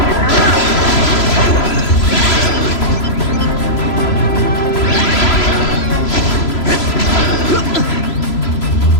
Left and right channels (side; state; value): right; late; 3.0 ms